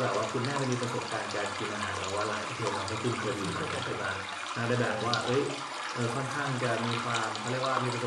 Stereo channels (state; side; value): identical; both; correlation 1.00